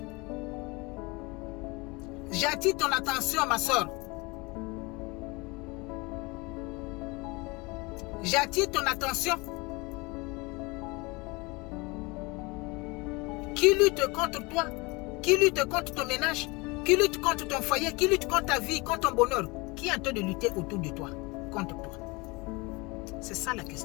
J'attire ton attention, ma soeur. J'attire ton attention. Qui lutte contre toi? Qui lutte contre ton ménage? Qui lutte contre ton foyer? Qui lutte contre ta vie, contre ton bonheur? Qui est en train de lutter autour de toi, contre toi? C'est ça la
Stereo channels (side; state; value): right; quieter; 25.7 dB